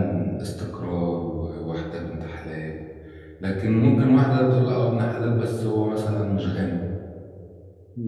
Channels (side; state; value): both; identical; correlation 1.00